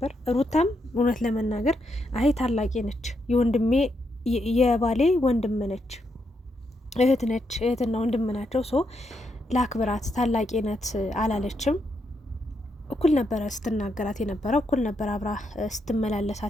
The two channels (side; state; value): both; normal; correlation 0.80